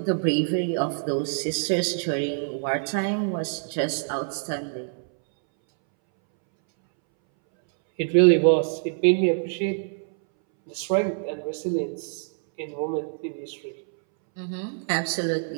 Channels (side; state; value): left; silent; 61 dB below the other